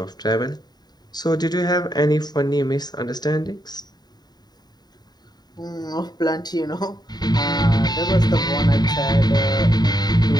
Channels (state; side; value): late; right; 0.20 ms